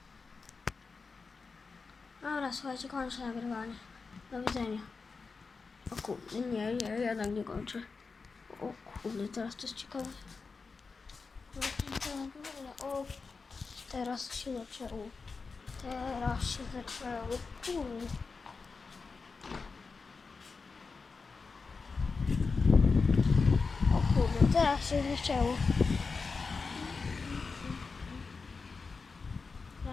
Dobra, słuchajcie, kończę nagrywanie. Do widzenia. O kurde, nie, jednak nie kończę. O kurde, teraz to jest ciekawe. O, teraz się zaczęło. Kurde. O kurde, teraz się zaczęło.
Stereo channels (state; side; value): quieter; right; 4.6 dB